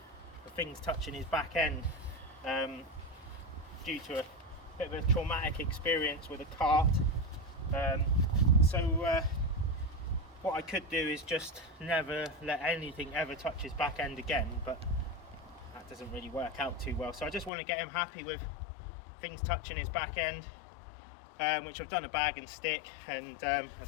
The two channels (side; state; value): right; drops out; at 17.5 s